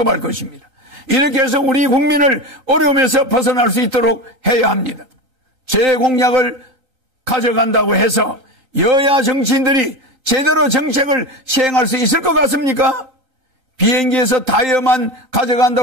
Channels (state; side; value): late; left; 2.6 ms